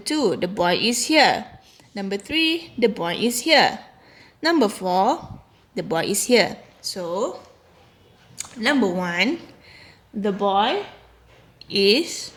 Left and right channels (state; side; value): identical; both; correlation 1.00